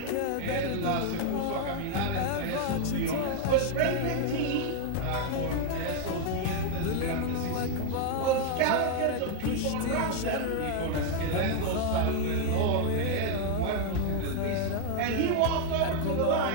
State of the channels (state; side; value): different; both; correlation 0.00